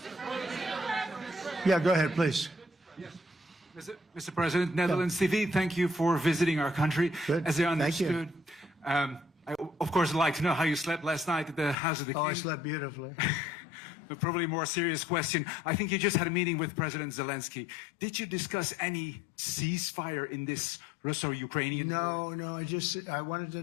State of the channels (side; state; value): right; drops out; at 11.8 s